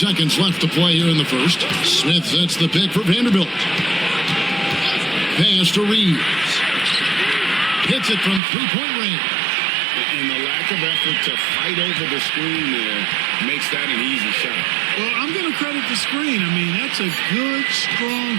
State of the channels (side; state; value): left; drops out; at 8.4 s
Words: left to play here in the first. Smith sets the pick for Vanderbilt. Pass to Reeves. Hits it from three-point range. And the lack of effort to fight over the screen there makes that an easy shot. Well, I'm going to credit the screen. I mean, that's a good,